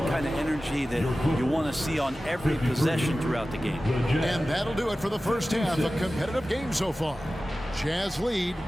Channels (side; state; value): both; normal; correlation 0.95